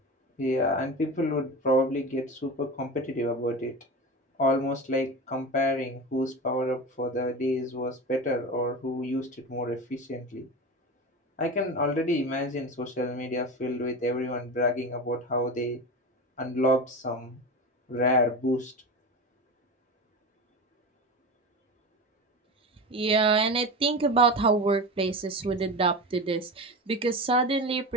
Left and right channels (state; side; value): normal; both; correlation 0.26